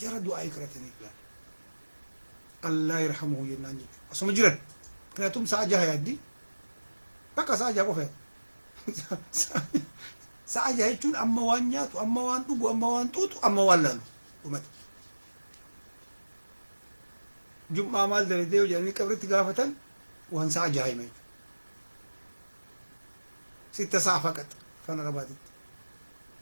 jara du'aa ikratanii filan Allah yarhamuhu jennaan jechuudha asuma jiran kanatum sa'a jaha yaaddi bakka sa'a jaha qofa sa'a jaha jechuun amma waan nyaatu amma waan dhugu amma waan xuuxu amma waan laalu dhumate jum'aa maal dalagdee jedhanii qabritti gaafatan waan sa'a jaha hima jechuudha ستة ساعة فقط فانا رباطت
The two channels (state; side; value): inverted; both; correlation -1.00